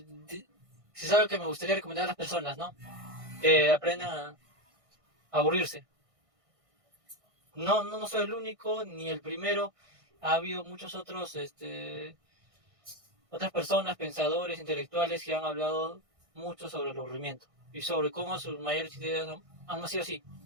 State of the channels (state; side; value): late; left; 1.6 ms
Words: es algo que me gustaría recomendar a las personas, ¿no? Que aprendan a aburrirse. No soy el único ni el primero. Ha habido muchos otros, otras personas, pensadores, intelectuales que han hablado mucho sobre el aburrimiento y sobre cómo sus mayores ideas han nacido así,